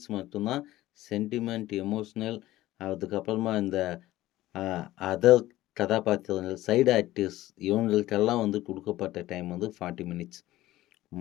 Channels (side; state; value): right; quieter; 16.0 dB